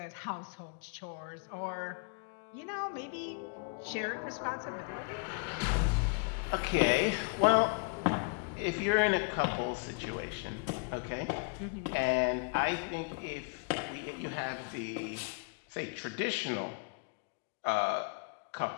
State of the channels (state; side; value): quieter; right; 33.6 dB